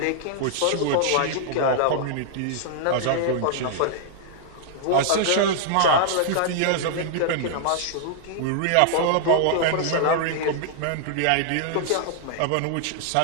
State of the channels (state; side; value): different; both; correlation -0.01